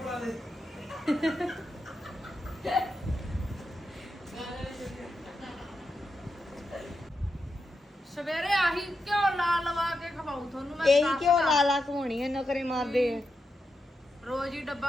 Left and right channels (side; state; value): both; normal; correlation 0.86